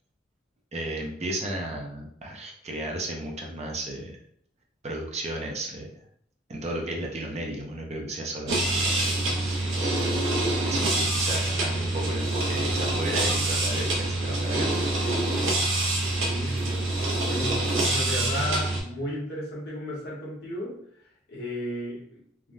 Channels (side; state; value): both; normal; correlation 0.52